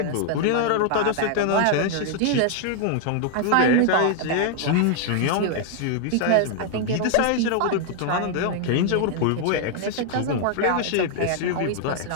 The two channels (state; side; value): different; both; correlation 0.00